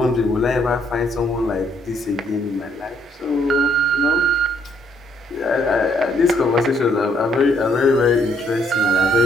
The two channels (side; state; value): both; normal; correlation 0.69